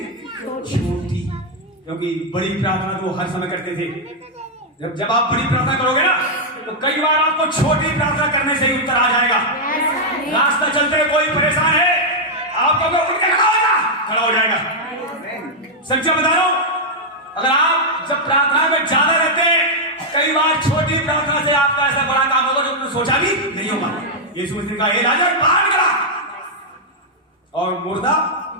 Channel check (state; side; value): normal; both; correlation -0.03